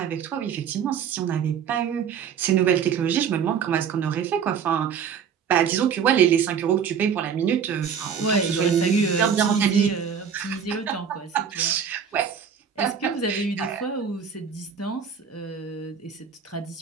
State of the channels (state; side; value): quieter; left; 7.3 dB